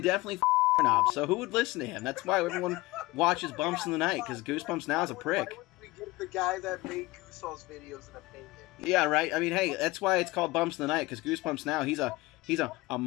definitely knob. So who would listen to him? That's why everyone watches Bumps in the Night, because Goosebumps now is a prick. Why would we give the guy that made Goosebumps videos an opinion? Yeah, right. I mean, hey, that's why it's called Bumps in the Night, because Goosebumps now he's a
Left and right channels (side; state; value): right; quieter; 20.8 dB